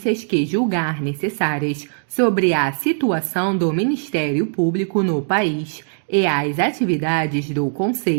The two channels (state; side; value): silent; left; digital silence